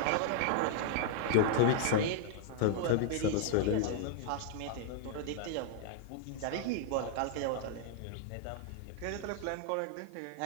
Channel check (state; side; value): different; both; correlation -0.01